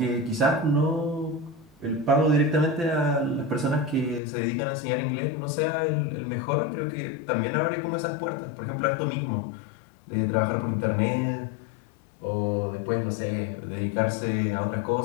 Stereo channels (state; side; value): drops out; right; at 4.2 s